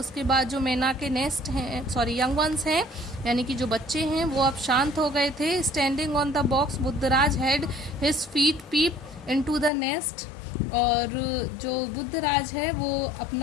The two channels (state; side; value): drops out; right; at 9.7 s